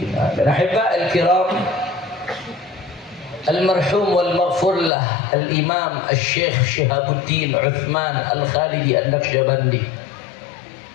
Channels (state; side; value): drops out; right; at 4.9 s